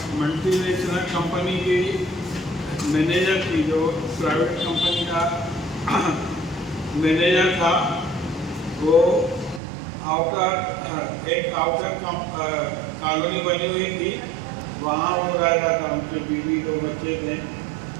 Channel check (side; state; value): left; drops out; at 9.6 s